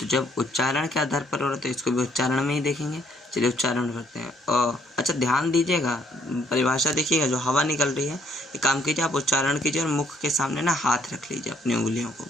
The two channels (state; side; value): normal; both; correlation 0.67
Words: जब उच्चारण के आधार पर हो रहा है तो इसको भी उच्चारण में ही देखेंगे। चलिए उच्चारण करते हैं। अच्छा, ध्यान दीजिएगा, परिभाषा देखिएगा, जो हवा निकल रही है, ये काम कीजिए, आप उच्चारण कीजिए और मुख के सामने ना हाथ रख लीजिए अपनी उंगलियों को,